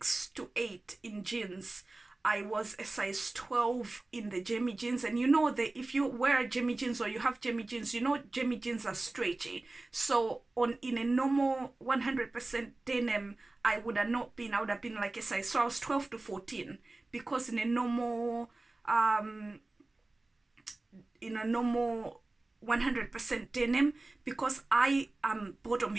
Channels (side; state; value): left; quieter; 3.0 dB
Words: to 8 in jeans, I was a size 12 in the Jimmy jeans. And you know that if you wear Jimmy jeans or you have Jimmy jeans, you know Jimmy jeans are stretchy. So in a normal 100% denim, I would have been like a size, so I was 12 to 14, because in a normal 100% denim, because I am bottom